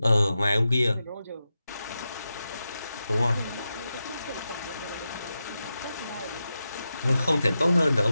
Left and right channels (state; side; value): inverted; both; correlation -0.90